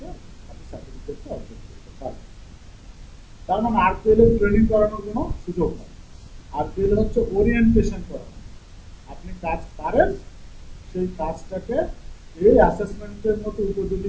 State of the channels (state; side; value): identical; both; correlation 1.00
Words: আপনি সার্টিফিকেটটা অর্জন করতে পারেন। তার মানে আরপিএল এর ট্রেনিং করানোর কোনো সুযোগ নেই। আরপিএল হচ্ছে ওরিয়েন্টেশন করানো, আপনি কাজ পারেন সেই কাজটাকে এই অ্যাসেসমেন্টের মতো